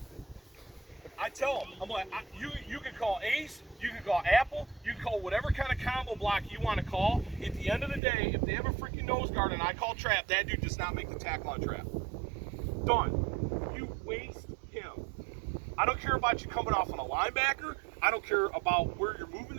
I tell him, I'm like, you can call ace, you can call apple, you can call whatever kind of combo block you want to call. At the end of the day, if they have a freaking nose guard and I call trap, that dude does not make the tackle on trap. Done. You waste him. I don't care about you coming off on a linebacker. I don't care about where you're moving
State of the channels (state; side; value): drops out; left; at 8.0 s